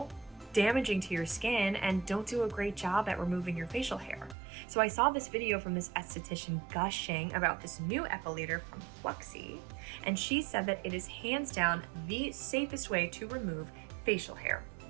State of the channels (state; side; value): drops out; left; at 4.4 s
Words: damaging to your skin, and don't do a great job at removing your facial hair. So I saw this video from this esthetician gushing about this new epilator from Pluxy, and she said that it is hands down the safest way to remove facial hair